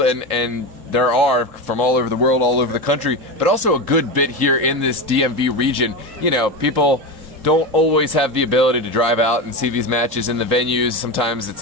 there are from all over the world, all over the country, but also a good bit here in this DMV region. You know, people don't always have the ability to drive out and see these matches in the venues. Sometimes it's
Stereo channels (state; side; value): late; left; 3.8 ms